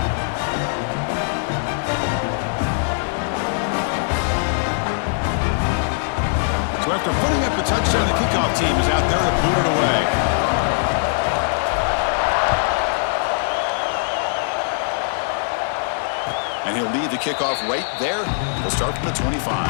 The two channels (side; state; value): right; silent; digital silence